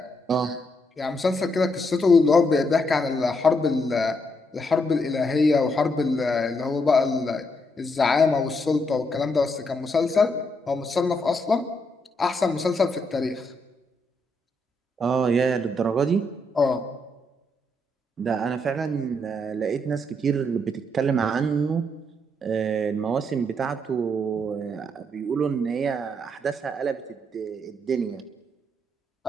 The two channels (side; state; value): both; normal; correlation 0.77